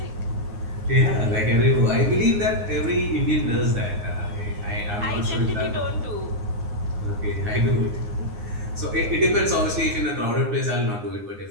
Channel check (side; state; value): left; late; 9.7 ms